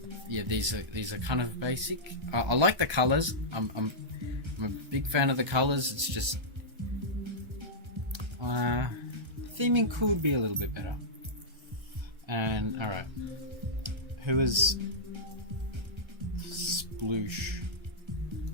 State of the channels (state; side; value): late; left; 1.3 ms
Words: yeah, these are kind of basic. I like the colors. I'm a big fan of the colors. It's just theming could be a little bit better. And alright, who is Sploosh?